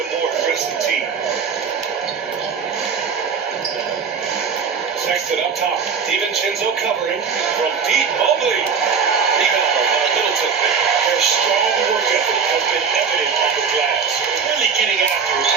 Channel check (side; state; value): left; quieter; 6.1 dB